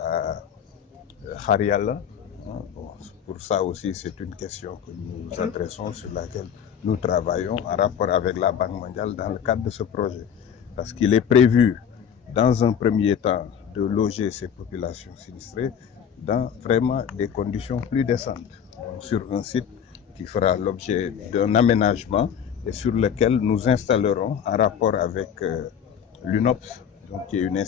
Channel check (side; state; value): right; quieter; 8.2 dB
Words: Khariala. Bon, pour ça aussi, c'est une question que nous adressons, sur laquelle nous travaillons en rapport avec la Banque mondiale dans le cadre de ce projet. Parce qu'il est prévu, dans un premier temps, de loger ces populations sinistrées dans vraiment des conditions plus décentes. Donc, sur un site qui fera l'objet d'un aménagement et sur lequel nous installerons, en rapport avec l'UNOPS, donc, qui est une